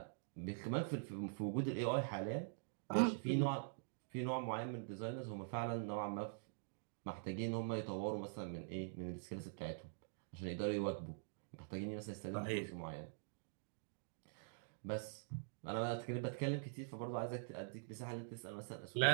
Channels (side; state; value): left; silent; digital silence